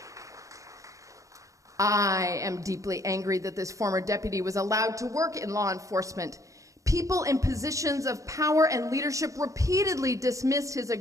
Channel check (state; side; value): late; left; 0.16 ms